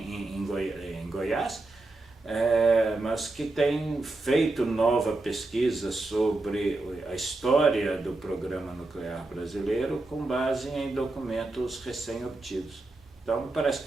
Goiás, mas que tem feito nova pesquisa sobre a história do programa nuclear brasileiro com base em documentos recém-obtidos. Então, me parece que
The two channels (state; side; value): quieter; left; 3.1 dB